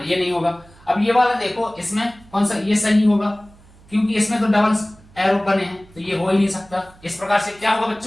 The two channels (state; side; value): noise; right; hum, 26 dB below the sound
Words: ये नहीं होगा। अब ये वाला देखो, इसमें कौन सा, ये सही होगा, क्योंकि इसमें तो डबल एरो बने हैं, तो ये हो ही नहीं सकता। इस प्रकार से क्या होगा